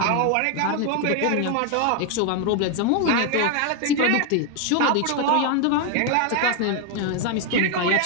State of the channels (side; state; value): both; different; correlation 0.01